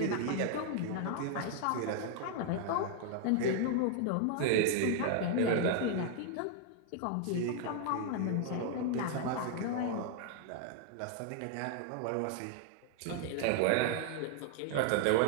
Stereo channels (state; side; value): different; both; correlation -0.01